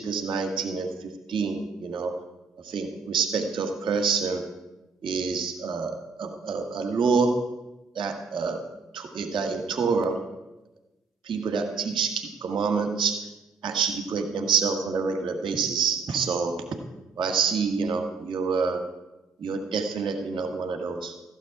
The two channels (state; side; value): quieter; left; 4.8 dB